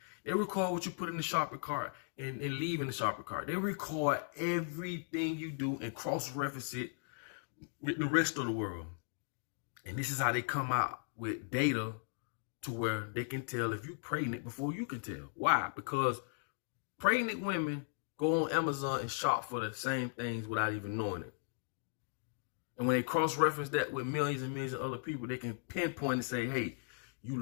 They record what you put in the shopping cart and leave in the shopping cart. They record everything you do and cross-reference it with the rest of the world. And this is how they come out with data to where they can tell if you're pregnant before you can tell. Why? Because pregnant women go on Amazon and shop for the same things without even knowing it. And when they cross-reference that with millions and millions of other people, they can pinpoint and say, hey, you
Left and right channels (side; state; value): right; silent; digital silence